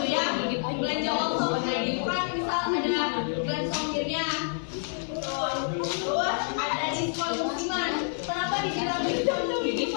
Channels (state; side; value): silent; right; 57 dB below the other